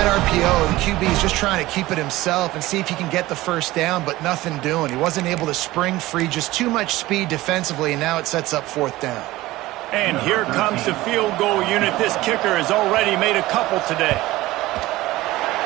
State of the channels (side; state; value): left; quieter; 17.9 dB